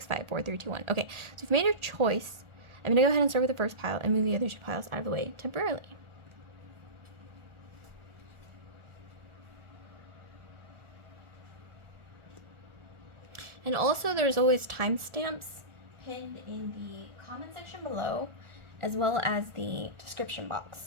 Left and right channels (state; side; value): late; left; 1.4 ms